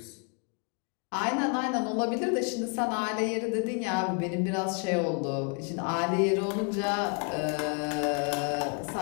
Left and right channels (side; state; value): right; quieter; 37.7 dB